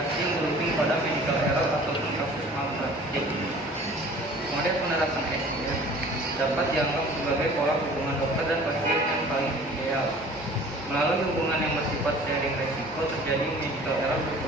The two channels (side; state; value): both; normal; correlation 0.47